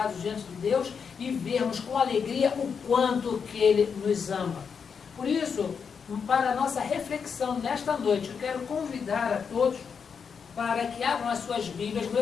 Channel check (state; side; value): quieter; right; 6.3 dB